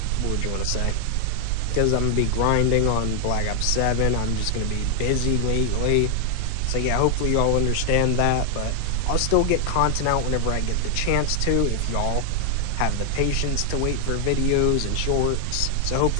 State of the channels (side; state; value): both; different; correlation 0.00